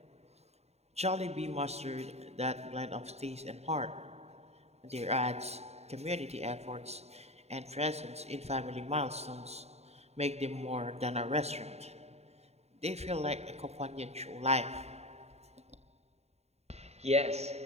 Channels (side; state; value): left; late; 0.31 ms